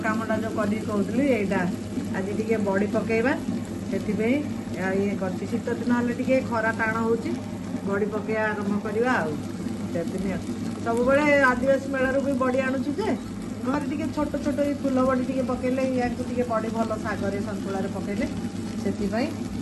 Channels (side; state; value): both; identical; correlation 1.00